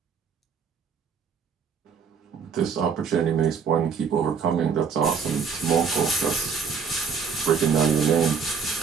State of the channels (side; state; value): left; quieter; 6.0 dB